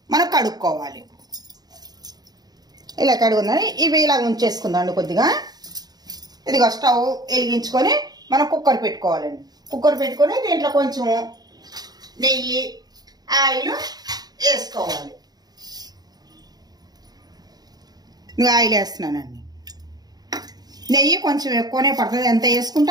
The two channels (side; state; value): left; late; 0.19 ms